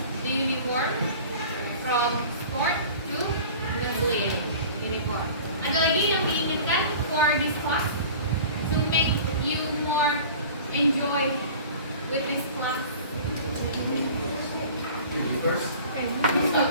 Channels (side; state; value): both; inverted; correlation -0.42